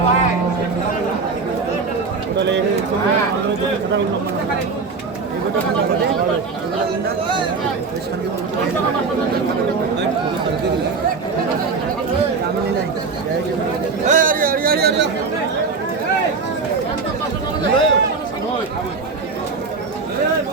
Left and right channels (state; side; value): quieter; left; 4.6 dB